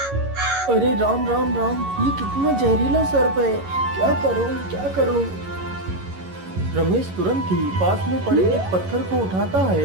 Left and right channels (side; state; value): left; late; 11 ms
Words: अरे राम राम राम, ये कितना जहरीला सर्प है, क्या करूं क्या करूं? रमेश तुरंत ही पास में पड़े एक पत्थर को उठाता